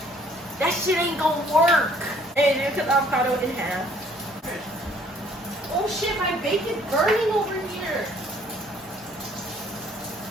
that shit ain't gonna work. And then cut the avocado in half. Oh shit, my bacon's burning over here.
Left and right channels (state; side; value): normal; both; correlation 0.60